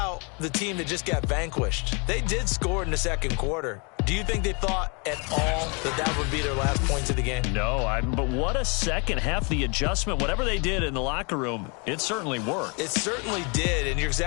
the team that just got vanquished. They did score in the 2nd quarter. Do you think they thought at all that that would be their last points of the game? No, but what a second half. The adjustment, whatever they did in the locker room, it certainly worked. It certainly did, and you're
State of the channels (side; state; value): right; quieter; 32.6 dB